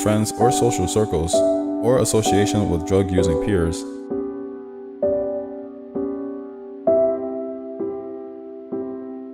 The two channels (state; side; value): identical; both; correlation 1.00